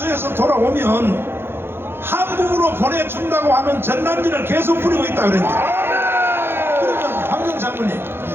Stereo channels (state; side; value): late; left; 0.11 ms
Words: 돌아오면 한국으로 보내준다고 하는 전단지를 계속 뿌리고 있다 그랬는데, 그러면 황정 장군님,